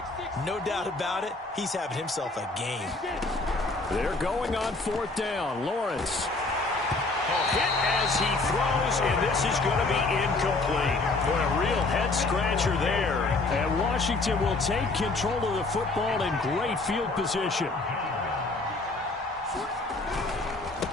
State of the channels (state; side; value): quieter; right; 3.3 dB